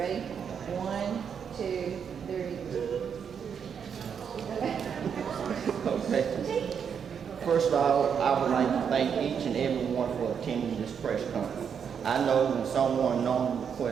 1, 2, 3. Okay. First of all, I would like to thank each and every one for attending this press conference. I know when someone normally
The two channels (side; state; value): left; quieter; 7.3 dB